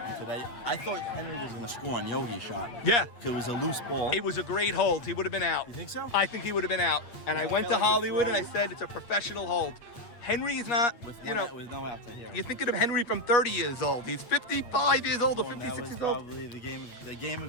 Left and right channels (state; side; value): late; right; 8.2 ms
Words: today, I thought Henry was gonna score on Yogi's shot. Yeah. It was a loose ball. It was a great hold. He would have been out. You think so? I think he would have been out. And I went to Hollywood and I said it's a professional hold. Henry is not, with you know, with no outs, I hear it. you're thinking of Henry from 30 years old. He's 55 years old or 56 That was years old. probably the game